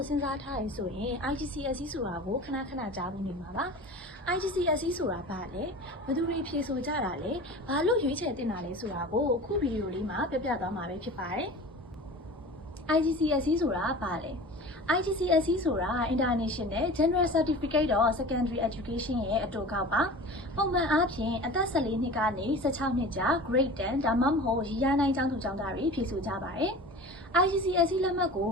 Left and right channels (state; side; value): normal; both; correlation 0.37